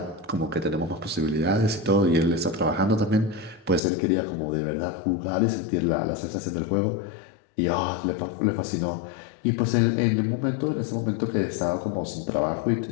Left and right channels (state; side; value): drops out; right; at 3.8 s